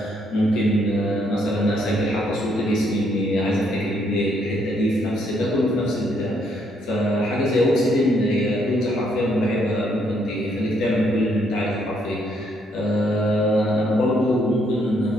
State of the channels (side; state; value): both; normal; correlation 0.72